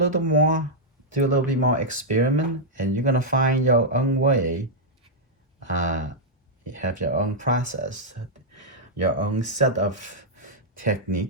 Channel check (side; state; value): both; normal; correlation -0.06